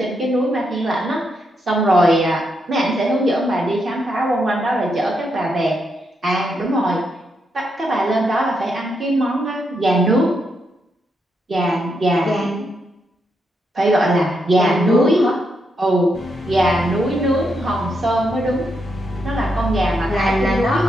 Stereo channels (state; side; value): normal; both; correlation 0.81